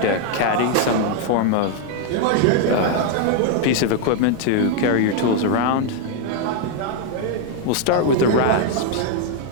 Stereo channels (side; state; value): both; different; correlation 0.00